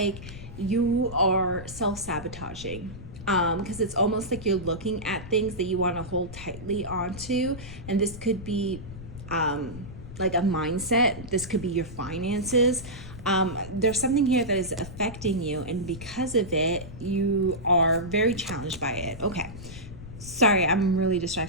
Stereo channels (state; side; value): noise; left; rumble, 13 dB below the sound